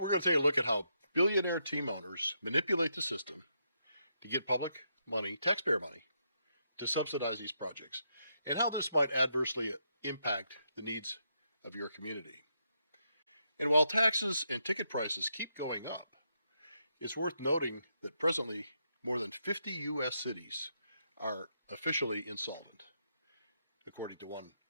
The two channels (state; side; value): inverted; both; correlation -0.80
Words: going to take a look at how billionaire team owners manipulate the system to get public money, taxpayer money, to subsidize these projects, and how this might adversely impact the needs of your community. And while taxes and ticket prices keep going up, it's worth noting that presently more than 50 U.S. cities are officially insolvent, according to one